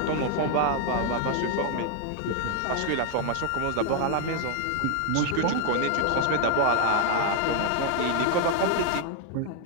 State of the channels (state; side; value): different; both; correlation 0.00